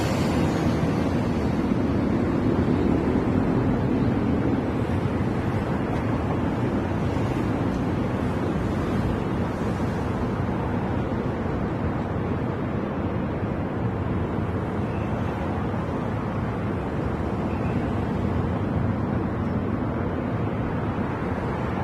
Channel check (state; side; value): identical; both; correlation 1.00